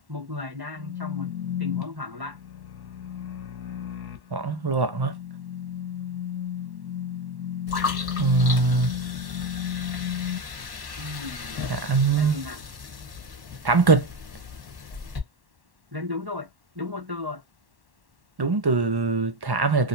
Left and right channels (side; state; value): left; late; 1.1 ms